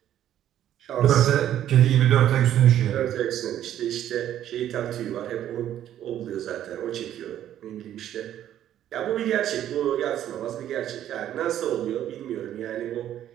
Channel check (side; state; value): left; quieter; 11.4 dB